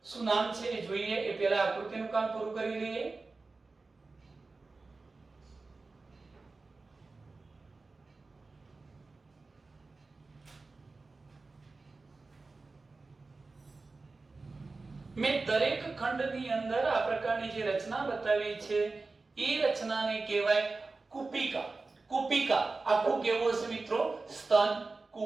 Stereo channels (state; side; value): quieter; left; 3.7 dB